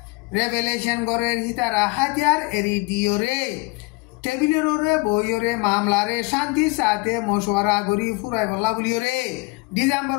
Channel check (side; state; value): right; quieter; 25.9 dB